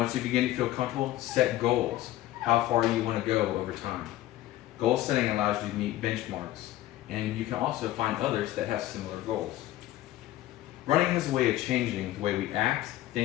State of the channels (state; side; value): quieter; right; 14.9 dB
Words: you begin to feel comfortable, set goals. How far you want to go over time. Goal setting allows you to meet benchmarks, and you can also find others that have similar goals. Running is a way of changing the way we act,